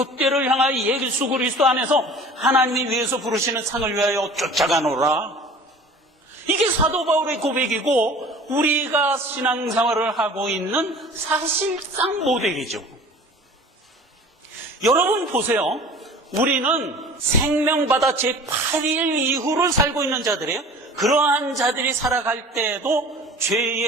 향하여 예수 그리스도 안에서 하나님이 위에서 부르시는 상을 위하여 쫓아가노라. 이게 사도 바울의 고백이고 우리가 신앙생활을 하고 있는 사실상 모델이죠. 여러분 보세요. 우리는 생명받아 제8일 이후를 살고 있는 자들이에요. 그러한 자들이 살아갈 때에도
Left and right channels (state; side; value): normal; both; correlation 0.43